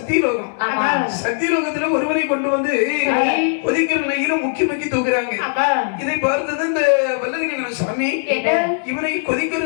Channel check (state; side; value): silent; right; digital silence